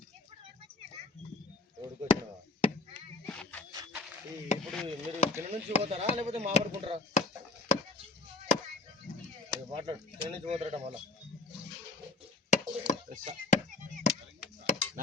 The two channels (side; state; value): right; quieter; 3.1 dB